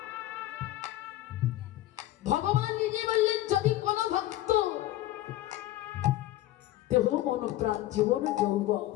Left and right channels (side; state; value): right; quieter; 15.2 dB